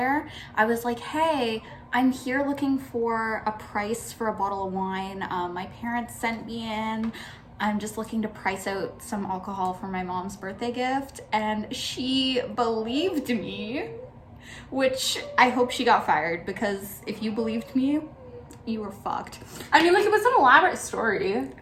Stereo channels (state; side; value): identical; both; correlation 1.00